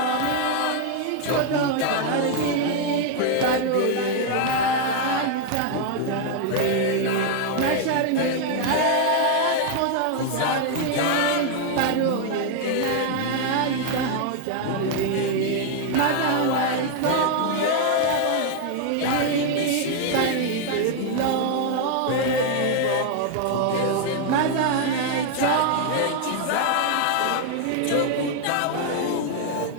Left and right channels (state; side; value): different; both; correlation 0.00